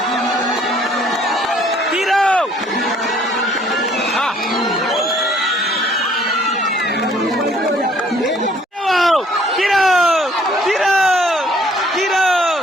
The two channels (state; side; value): normal; both; correlation 0.60